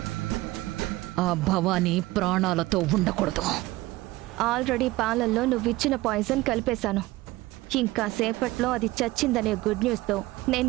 ఆ భవానీ ప్రాణాలతో ఉండకూడదు. ఆల్రెడీ పాలల్లో నువ్విచ్చిన పాయిజన్ కలిపేశాను. ఇంకా సేపట్లో అది చచ్చిందనే గుడ్ న్యూస్తో నేను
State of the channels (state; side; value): quieter; left; 18.9 dB